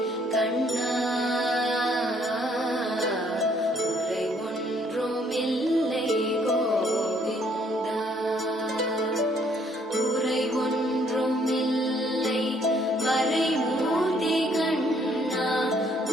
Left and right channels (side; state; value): both; normal; correlation 0.65